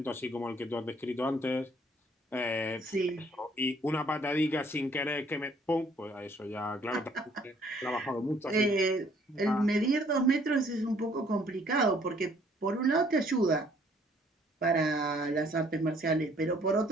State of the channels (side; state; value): both; normal; correlation 0.62